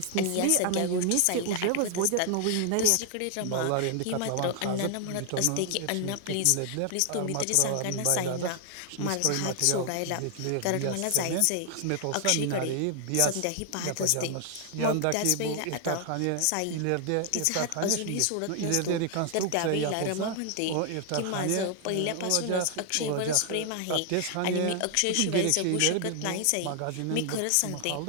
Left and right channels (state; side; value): different; both; correlation 0.00